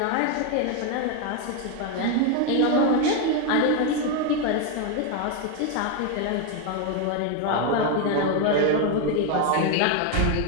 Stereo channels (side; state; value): both; different; correlation 0.01